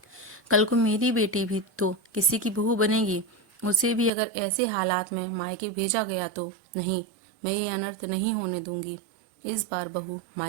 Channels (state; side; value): drops out; left; at 4.1 s